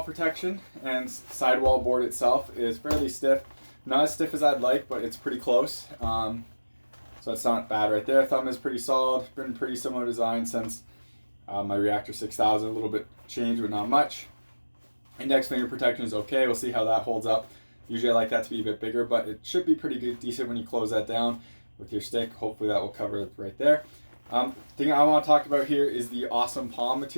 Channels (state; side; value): inverted; both; correlation -1.00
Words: protection, and sidewall board itself is fairly stiff. Not as stiff as I'd like, but it's pretty close. So that's not bad right there. Thumb is pretty solid. Been pretty similar design since my Reactor 6000. A little bit changed, but not much. Index finger protection is okay. We'll see how that holds up. Usually I like that to be a bit bigger, but it should be pretty good, decent when you close that down with your stick. Hopefully that will cover it right there. Thing I want to talk about here is the awesome palm